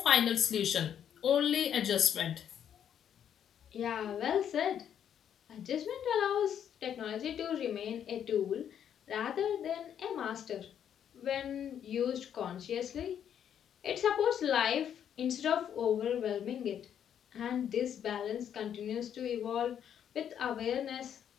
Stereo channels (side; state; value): right; quieter; 9.1 dB